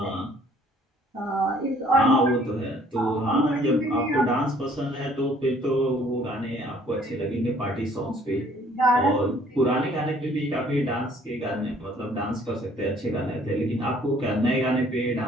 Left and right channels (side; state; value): both; normal; correlation 0.59